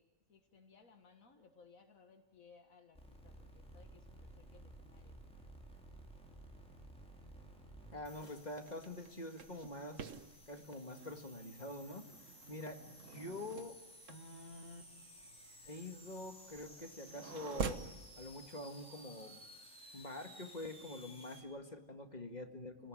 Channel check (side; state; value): both; normal; correlation -0.01